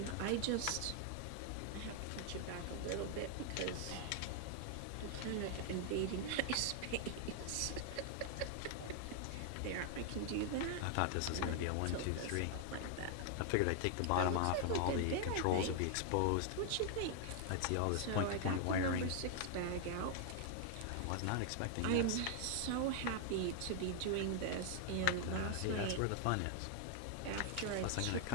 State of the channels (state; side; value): different; both; correlation 0.00